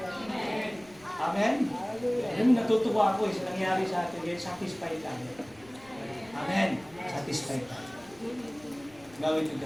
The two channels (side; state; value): left; noise; rumble, 25 dB below the sound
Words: Amen? Alam, natutuwa ako sa nangyari sa atin, dahil satisfied tayo. Amen? Satisfied tayo. Gawin to